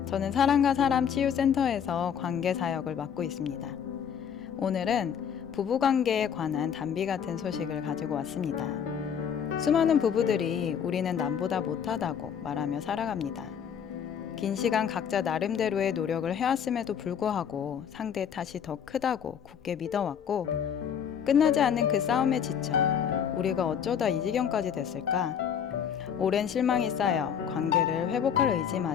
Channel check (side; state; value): right; quieter; 8.0 dB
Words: 저는 사람과 사람 치유센터에서 관계 사역을 맡고 있습니다. 오늘은 부부관계에 관한 단비 같은 소식을 가지고 왔습니다. 수많은 부부들이 우리는 남보다 못하다고 말하며 살아갑니다. 긴 시간 각자 나름대로의 노력을 해왔음에도 불구하고 상대의 탓이 더 크다고 굳게 믿어왔고 끝나지 않는 그 싸움에 지쳐 우리가 어쩌다 이 지경까지 됐을까? 오랜 실망이 쌓여 관계를 회복할